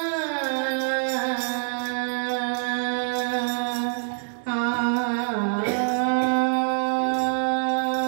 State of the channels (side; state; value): left; silent; digital silence